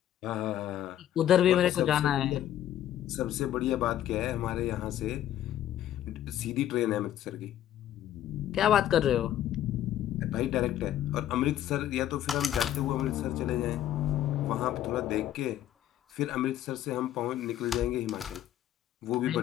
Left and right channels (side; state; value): right; quieter; 11.9 dB